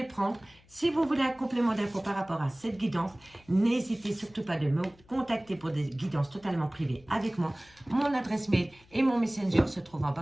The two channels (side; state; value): left; noise; hum, 28 dB below the sound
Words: prendre. Si vous voulez un complément d'infos par rapport à cette guidance, n'hésitez surtout pas de me contacter pour des guidances totalement privées avec moi. Mon adresse mail et mon messenger se trouvent en